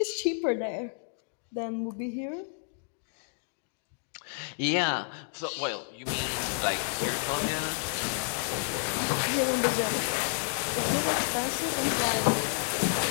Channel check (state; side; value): silent; right; 58 dB below the other